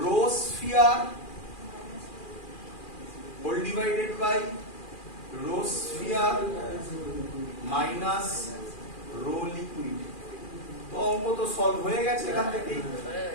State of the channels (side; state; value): right; late; 2.4 ms